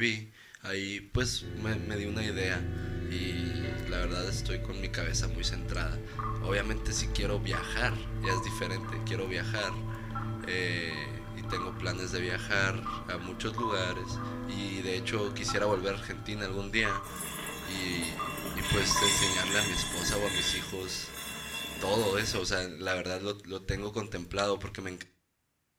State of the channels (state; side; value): identical; both; correlation 1.00